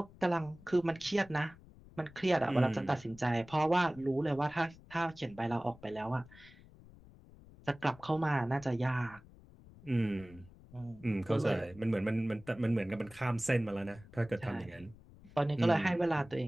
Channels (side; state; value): left; noise; rumble, 22 dB below the sound